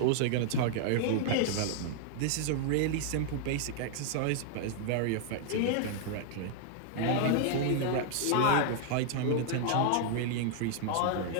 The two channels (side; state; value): both; different; correlation -0.01